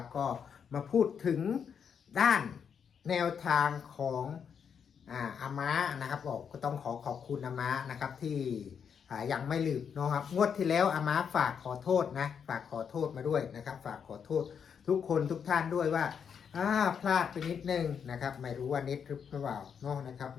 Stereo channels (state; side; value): quieter; right; 7.2 dB